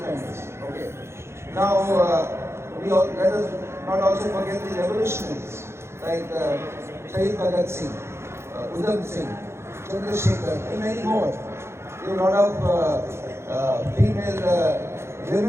Okay. Now, let us not also forget the revolutionaries like Shahid Bhagat Singh, Udham Singh, Chandrasekhar, and many more. There were a lot of female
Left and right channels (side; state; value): left; late; 0.13 ms